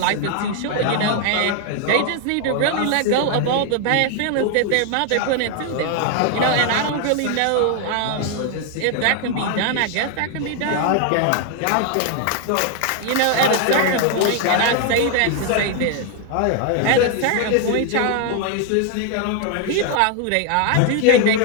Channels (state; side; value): different; both; correlation 0.01